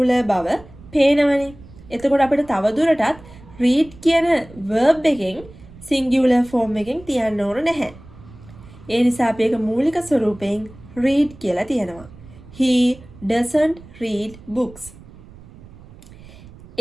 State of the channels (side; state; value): right; noise; rumble, 20 dB below the sound